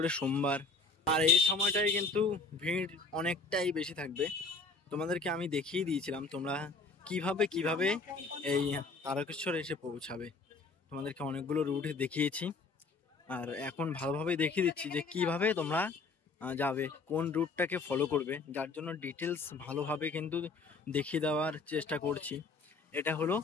সোমবার। আর এই সময়টাই কিন্তু ভিড় অনেকটাই বেশি থাকবে। তোমাদেরকে আমি দেখিয়ে দিয়েছিলাম তোমরা কিভাবে এই তারকেশ্বর এসে পৌঁছাবে। তোমাদেরকে অনেকগুলো রুট দেখিয়েছি, আর এখন ভালোভাবে দেখিয়ে দিচ্ছি যে কিভাবে তোমরা যাবে, কোন রুটটাকে ফলো করবে, যার জন্য ডিটেলস ভালোভাবে কিন্তু দেখিয়ে দেওয়ার চেষ্টা করছি। এটা হলো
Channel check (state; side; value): quieter; right; 4.0 dB